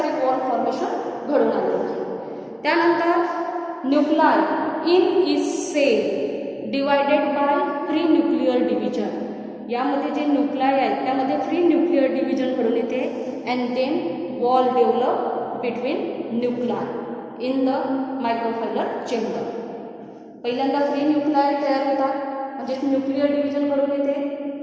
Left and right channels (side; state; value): both; identical; correlation 1.00